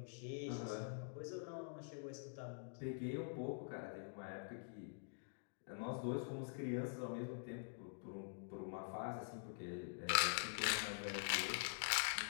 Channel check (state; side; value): silent; right; digital silence